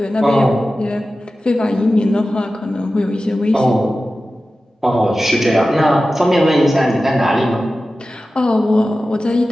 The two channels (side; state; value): both; normal; correlation 0.94